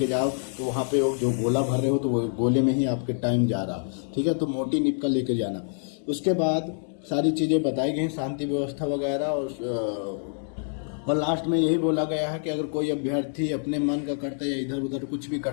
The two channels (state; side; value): silent; right; digital silence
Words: जाओ तो वहाँ पे जो गोला भर रहे हो तो वो गोले में ही आपके टाइम जा रहा, ठीक है। तो मोटी निप का लेकर जाना। उसके बाद सारी चीज़ें बताई गई, शांति व्यवस्था वगैरह, और लास्ट में यही बोला गया है कि अगर कोई अभ्यर्थी अपने मन का करता है या इधर उधर कुछ भी